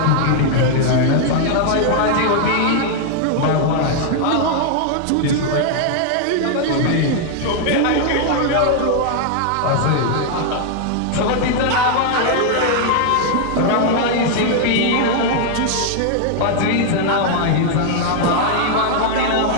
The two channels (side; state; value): both; different; correlation 0.00